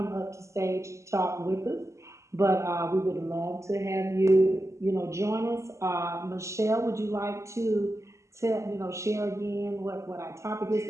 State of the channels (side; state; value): left; late; 0.14 ms